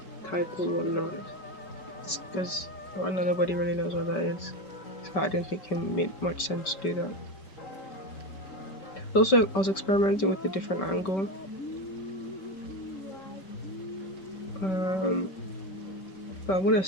title or not, because right now nobody really knows what that is. So I didn't think it made much sense to do that. Also, I was experimenting with a different angle. Um, but I'm gonna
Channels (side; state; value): right; late; 5.3 ms